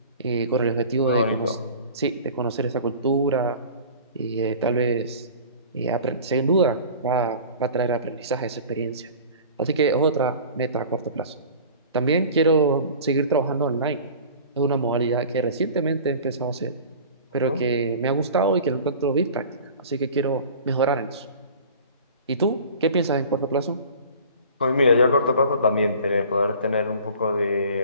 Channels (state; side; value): inverted; both; correlation -0.42